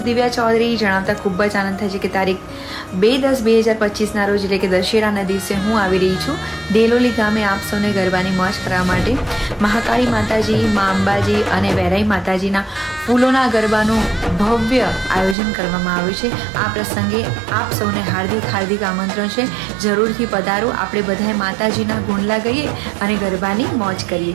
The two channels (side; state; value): left; drops out; at 15.4 s